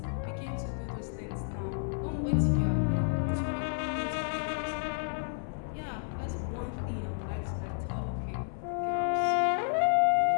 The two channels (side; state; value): right; silent; 57 dB below the other